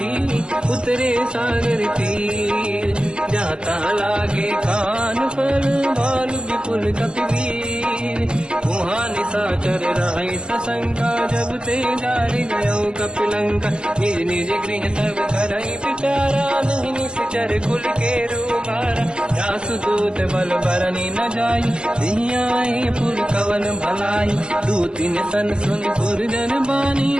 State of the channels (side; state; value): left; late; 0.051 ms